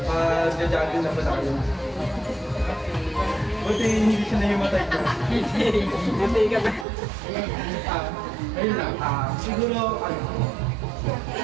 mag-jogging na pala kayo. Buti hindi siya nahimatay ko. Hindi ka ba? Ayun lang. Siguro,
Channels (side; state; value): left; drops out; at 6.9 s